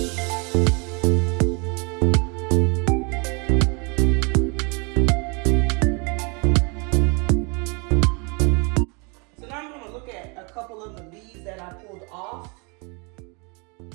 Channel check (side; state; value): left; quieter; 32.3 dB